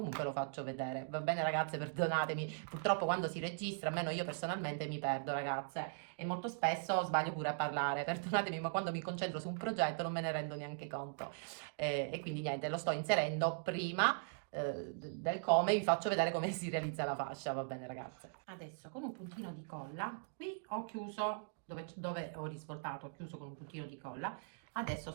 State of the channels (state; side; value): silent; left; digital silence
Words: lo faccio vedere. Va bene ragazze, perdonatemi, purtroppo quando si registra, almeno io personalmente mi perdo ragazze e molto spesso sbaglio pure a parlare, perdonatemi, ma quando mi concentro su un progetto non me ne rendo neanche conto. E quindi niente, lo sto inserendo prima del come, vi faccio vedere come si realizza la fascia, va bene ragazze. Adesso con un puntino di colla, qui ho chiuso, dove ho risvoltato, ho chiuso con un puntino di colla. Adesso